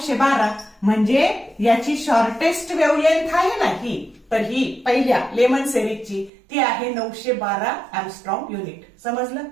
म्हणजे याची शॉर्टेस्ट वेव्हलेंथ आहे ना ही तर ही पहिल्या लेमन सिरीजची ती आहे 912 एंगस्ट्रॉम युनिट. समजलं?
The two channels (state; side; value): drops out; left; at 6.3 s